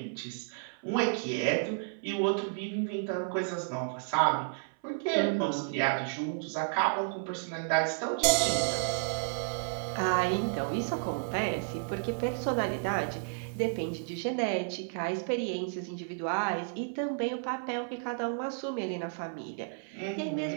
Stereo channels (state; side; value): silent; left; 56 dB below the other